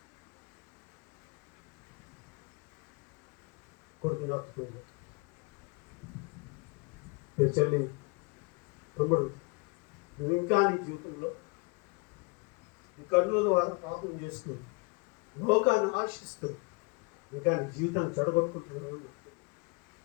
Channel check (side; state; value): right; quieter; 29.8 dB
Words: కొడుకుని హత్తుకుంది. చెల్లి, తమ్ముడు, ఇంకా నీ జీవితంలో నీ కన్నుల ద్వారా పాపం చేస్తూ లోకాన్ని ఆశిస్తూ ఇంకా నీ జీవితాన్ని చెడగొట్టుకుంటున్నావు.